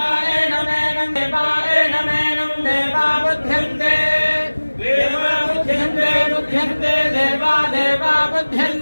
नमेनम् देवाय नमेनम् देवा बुध्यन्ते देवा बुध्यन्ते बुध्यन्ते देवा देवा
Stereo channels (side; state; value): both; inverted; correlation -1.00